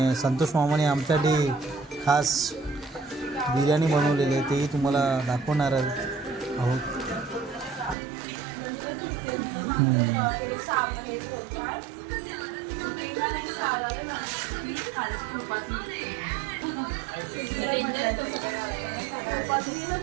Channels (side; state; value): left; drops out; at 8.0 s